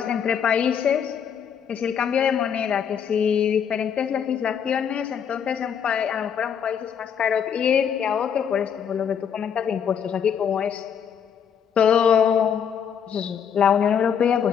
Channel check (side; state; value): right; quieter; 7.9 dB